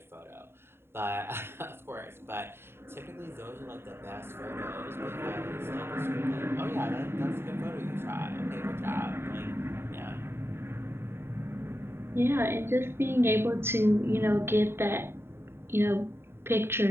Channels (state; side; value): late; left; 0.11 ms